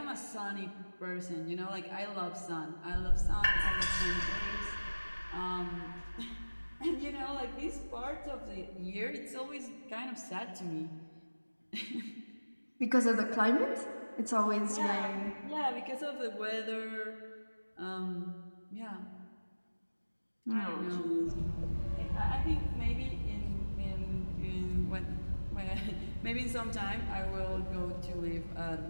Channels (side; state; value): both; inverted; correlation -1.00